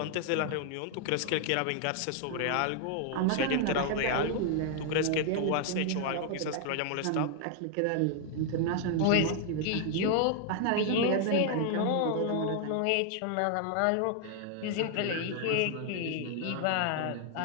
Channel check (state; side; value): different; both; correlation 0.00